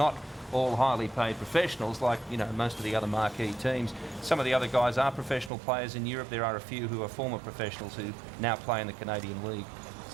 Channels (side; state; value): left; drops out; at 5.5 s